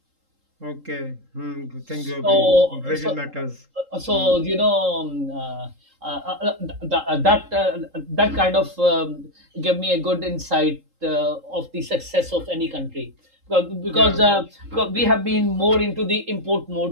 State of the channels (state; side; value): late; left; 3.7 ms